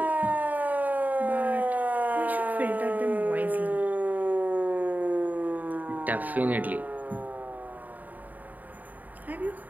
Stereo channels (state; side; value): late; left; 0.080 ms